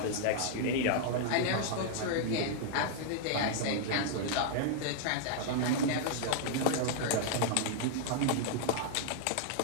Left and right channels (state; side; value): different; both; correlation -0.01